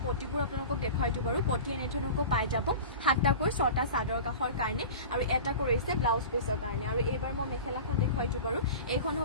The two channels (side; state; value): both; inverted; correlation -0.34